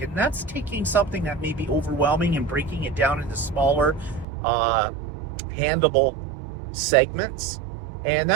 that's taking something that may be overwhelming and breaking it down into smaller, handleable segments. And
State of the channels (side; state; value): left; drops out; at 4.2 s